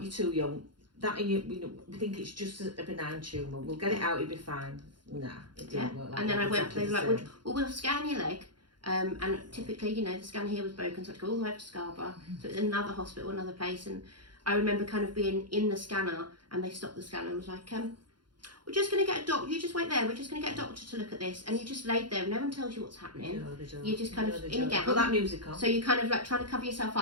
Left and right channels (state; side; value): late; left; 0.71 ms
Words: too young. That and you know, we think it's just a benign tumour. We'll get it out. It'll be fine. Nah, it didn't work like and then that. I went. They were like, "Well, we'll scan your leg." And typically, you know, the scan here was broken, so I had to go all the way up to Scarborough. So it was another hospital, another place. And I remember kind of being in the scanner, and they stopped the scanner and was like, "We're just going to get a doctor. You just wait there. We're just going to get a doctor to look at this." And you just laid there. No one tells you what's happening. No, they don't. You're just kind of in a gown. Put that music on. So you're kind of like trying to cover yourself